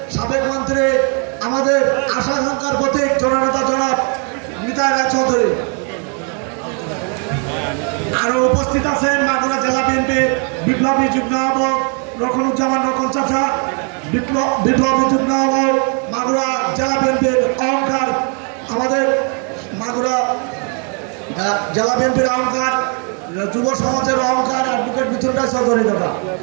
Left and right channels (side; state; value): left; quieter; 39.1 dB